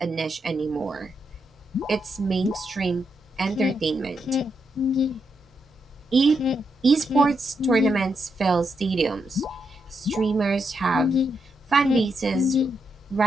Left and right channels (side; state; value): both; normal; correlation 0.82